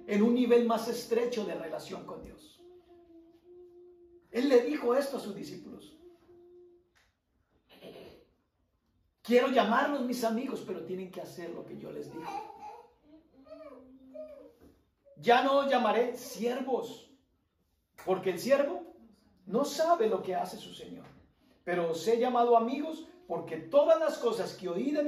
en un nivel más estrecho de relación con Dios. Él le dijo esto a sus discípulos. Quiero llamarlos mis amigos, pero tienen que hacer lo que yo les digo. Ya no os llamaré siervos, porque el siervo no sabe lo que hace su Señor. Pero os he llamado amigos, porque todas las cosas que oí de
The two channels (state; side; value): identical; both; correlation 1.00